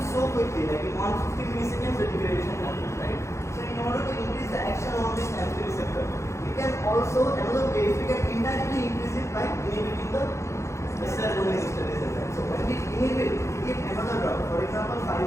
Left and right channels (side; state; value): right; late; 0.14 ms